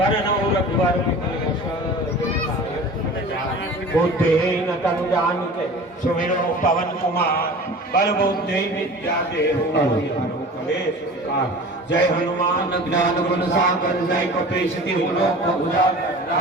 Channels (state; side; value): normal; both; correlation 0.39